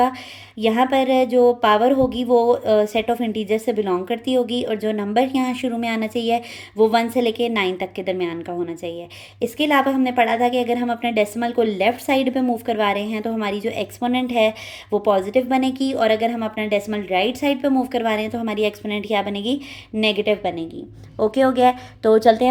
यहाँ पर जो पावर होगी वो सेट ऑफ इंटीजर से बिलोंग करती होगी, और जो नंबर यहाँ शुरू में आना चाहिए वो 1 से लेके 9 तक के दरमियान का होना चाहिए। इसके अलावा हमने पढ़ा था कि अगर हम अपने डेसिमल को लेफ़्ट साइड पे मूव करवा रहे हैं तो हमारी जो एक्सपोनेंट है वो पॉजिटिव बनेगी, और अगर हम अपना डेसिमल राइट साइड पे मूव करवा रहे हैं तो हमारी एक्सपोनेंट क्या बनेगी, नेगेटिव बनेगी। ओके हो गया। तो चलते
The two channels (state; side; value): identical; both; correlation 1.00